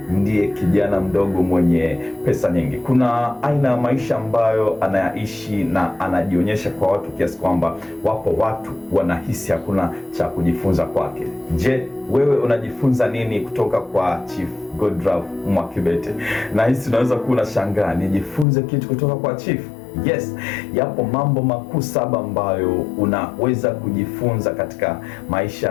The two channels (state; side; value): drops out; right; at 18.4 s